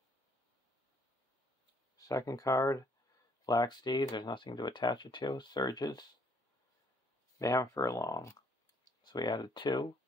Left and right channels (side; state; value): both; normal; correlation 0.65